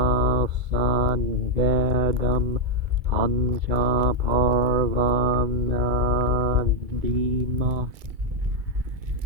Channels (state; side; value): late; left; 2.3 ms